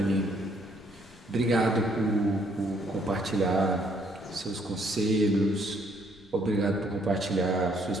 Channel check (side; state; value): left; noise; rumble, 26 dB below the sound